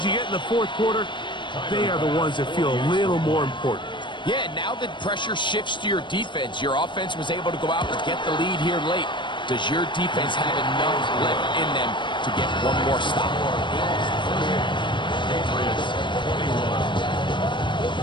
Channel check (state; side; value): late; right; 0.23 ms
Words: you get in the 4th quarter, they are the ones that feel a little more important. Yeah, now that pressure shifts to your defense, your offense was able to go out and get the lead here late. Does your defense have enough left in them to get one more stop? Patriots 21.